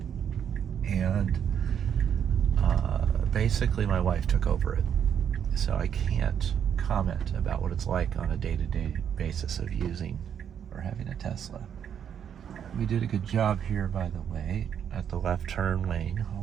and basically my wife took over it, so I can't comment about what it's like on a day-to-day basis of using or having a Tesla. We did a good job here, by the way, at the left turn lane,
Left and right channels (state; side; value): quieter; left; 8.5 dB